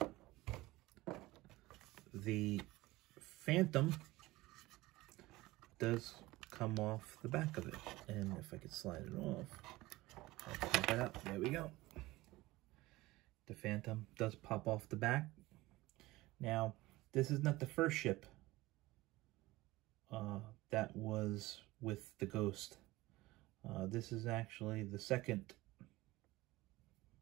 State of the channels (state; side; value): quieter; left; 19.2 dB